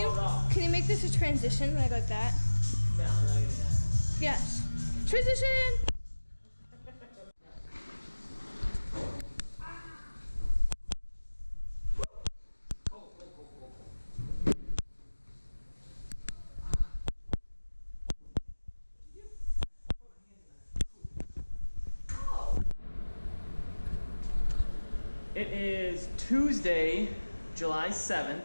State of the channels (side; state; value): both; inverted; correlation -1.00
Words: raw. Can you make this a transition when I go like that? No, I'm not gonna do that. Yes. Transition! It is Tuesday, July 7th,